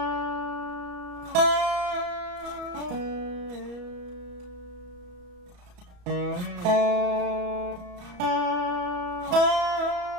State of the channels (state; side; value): late; left; 34 ms